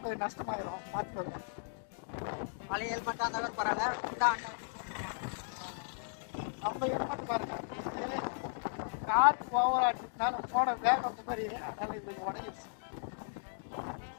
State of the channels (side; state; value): right; silent; digital silence